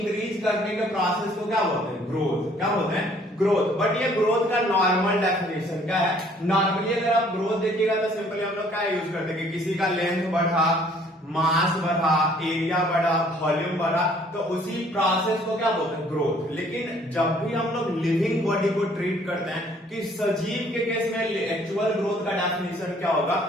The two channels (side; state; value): both; normal; correlation 0.59